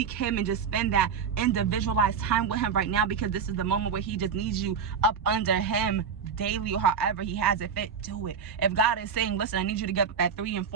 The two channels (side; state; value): left; quieter; 6.4 dB